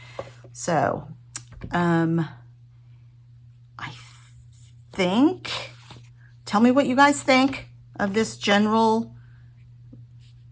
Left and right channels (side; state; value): both; identical; correlation 1.00